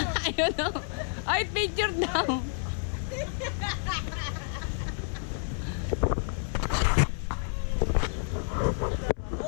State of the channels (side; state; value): right; silent; 58 dB below the other